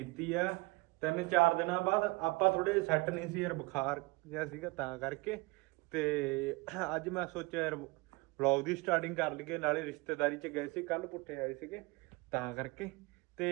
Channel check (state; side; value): quieter; left; 24.4 dB